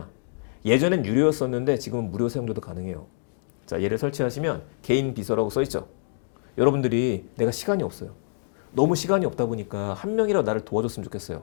예전엔 유료였었는데 지금은 무료 사용료도 가능해요. 자, 얘를 설치하시면 개인 비서라고 써있죠. 여러분들이 내가 시간이 없어요. 너무 시간이 없다 보니까 한 명이라도 나를 도와줬으면 좋겠어요.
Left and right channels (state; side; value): silent; right; digital silence